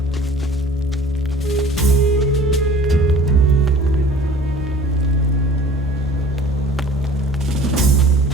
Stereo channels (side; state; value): both; normal; correlation 0.47